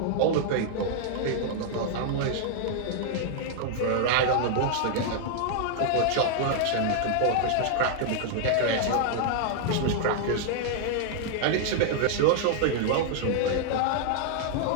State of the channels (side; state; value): both; different; correlation 0.00